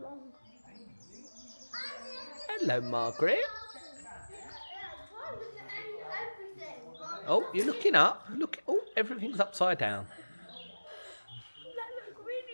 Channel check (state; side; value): inverted; both; correlation -1.00